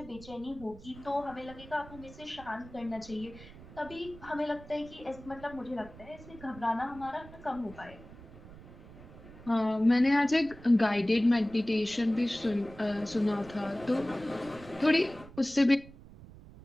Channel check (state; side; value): noise; right; rumble, 18 dB below the sound